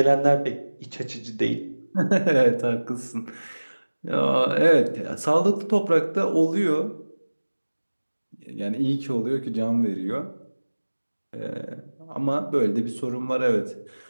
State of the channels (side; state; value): both; inverted; correlation -1.00